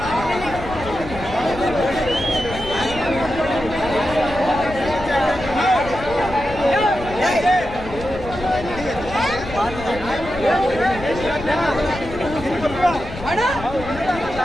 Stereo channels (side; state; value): left; noise; rumble, 12 dB below the sound